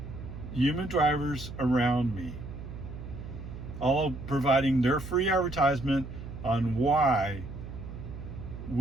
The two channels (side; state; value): right; noise; hum, 10 dB below the sound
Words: human drivers around me, all providing their free advertisement on why